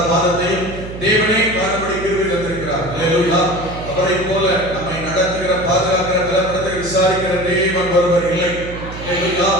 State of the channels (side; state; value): right; noise; hum, 11 dB below the sound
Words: மாதத்தையும் தேவனே காணும்படி கிருபை தந்திருக்கிறார். ஹல்லேலூயா. அவரை போல நம்மை நடத்துகிற, பாதுகாக்கிற, பலப்படுத்துகிற, விசாரிக்கிற தேவன் ஒருவர் இல்லை. ஹல்லேலூயா.